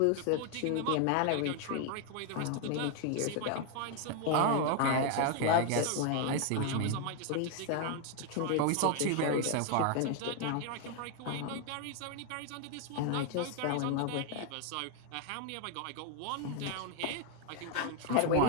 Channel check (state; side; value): different; both; correlation 0.01